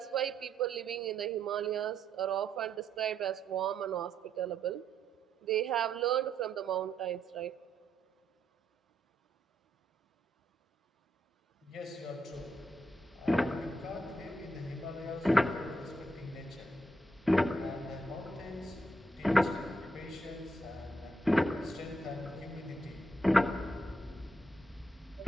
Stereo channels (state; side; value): normal; both; correlation 0.78